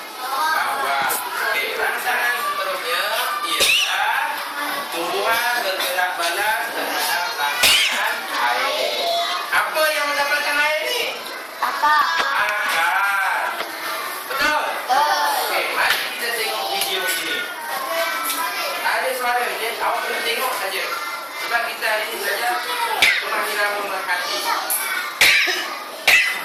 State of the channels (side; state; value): both; identical; correlation 1.00